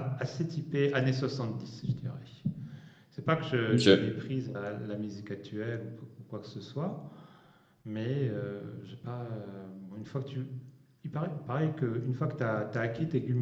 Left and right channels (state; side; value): identical; both; correlation 1.00